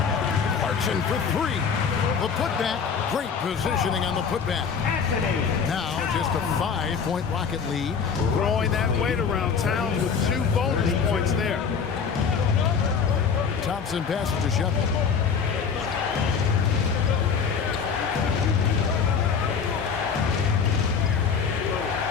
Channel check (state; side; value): quieter; right; 6.2 dB